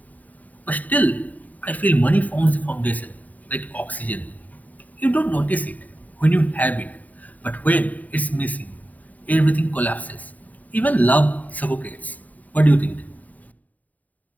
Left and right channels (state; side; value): late; right; 0.075 ms